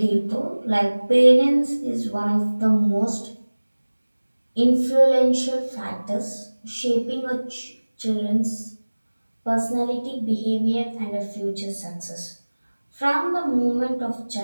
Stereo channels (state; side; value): inverted; both; correlation -1.00